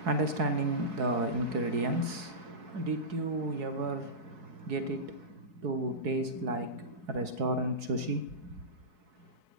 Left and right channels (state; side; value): late; left; 4.7 ms